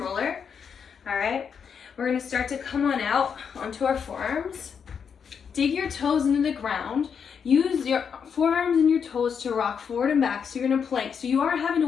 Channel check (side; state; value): right; quieter; 6.8 dB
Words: All right. We're gonna start to come on out onto our forearms. Dig your toes into the ground. Use your forearms and your toes to rock forward and back. So you're gonna plank. So you are having